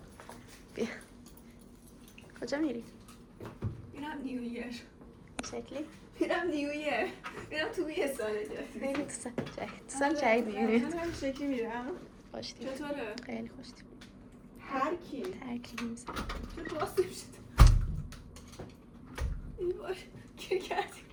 بیا کجا میری؟ میرم نیویر. شکلی؟ میرم نیویر. میرم توی یه سال جدید. خیلی تو سال جدید میری. من هم شکلی میرم. خوشتیم. چطوره؟ خیلی خوشتیم. هر کی؟ ترکی نیست. چه باز نمیشد. ای باش گیر کردیم.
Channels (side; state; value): both; identical; correlation 1.00